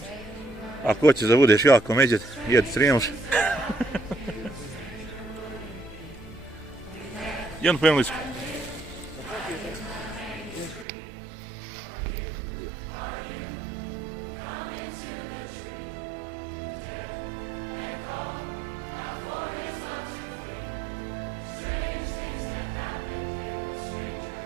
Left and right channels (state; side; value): drops out; left; at 10.9 s